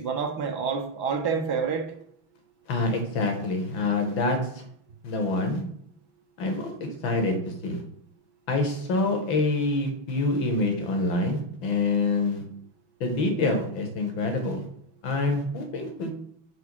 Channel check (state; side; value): late; right; 6.0 ms